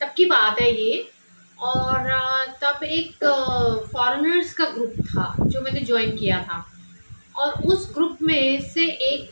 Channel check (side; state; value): both; inverted; correlation -1.00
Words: की बात है ये। और तब एक फॉरेनर्स का ग्रुप था जो मैंने ज्वाइन किया था। और उस ग्रुप में से